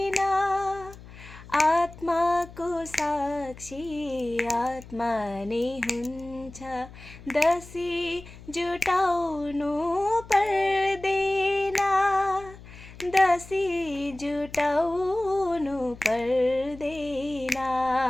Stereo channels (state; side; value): noise; left; hum, 18 dB below the sound